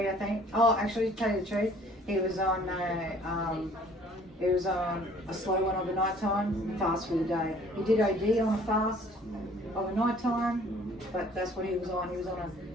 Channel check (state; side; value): normal; both; correlation 0.55